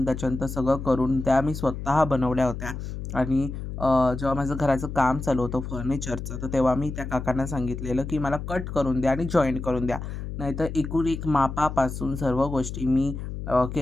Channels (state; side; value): noise; left; hum, 7 dB below the sound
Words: त्याच्यानंतर सगळं करून त्या मी स्वतः बनवल्या होत्या. आणि जेव्हा माझं घराचं काम चालू होतं फर्निचरचं, तर तेव्हा मी त्या काकांना सांगितलेलं, की मला कट करून द्या आणि जॉईंट करून द्या. नाहीतर एकूण एक मापापासून सर्व गोष्टी मी